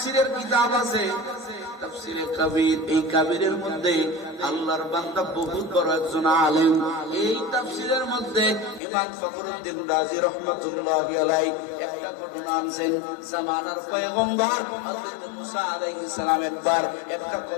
কিতাব আছে, তাফসীরে কাবীর। এই কাবীরের মধ্যে আল্লাহর বান্দা বহুত বড় একজন আলেম। এই তাফসীরের মধ্যে ইমাম ফখরুদ্দিন রাজি রাহমাতুল্লাহি আলাইহি একটা ঘটনা আনছেন। জামানার পয়গম্বর হযরত মুসা আলাইহিস সালাম একবার একটা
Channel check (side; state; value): right; drops out; at 8.8 s